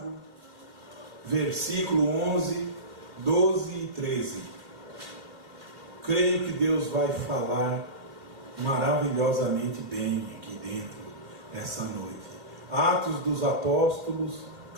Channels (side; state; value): left; late; 2.1 ms